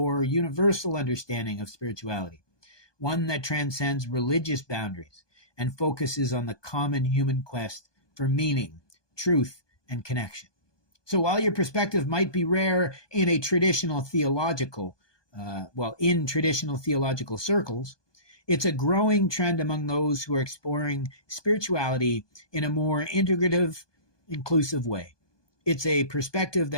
universal understanding of spirituality, one that transcends religious boundaries and focuses on the common human quest for meaning, truth, and connection. So while your perspective might be rare in traditional theological circles, it's a growing trend among those who are exploring spirituality in a more integrative, inclusive way. It's a perspective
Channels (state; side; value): late; right; 1.2 ms